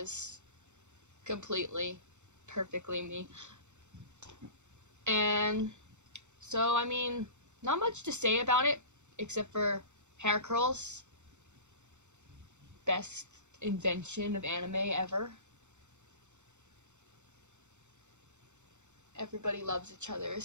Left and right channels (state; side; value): late; left; 0.84 ms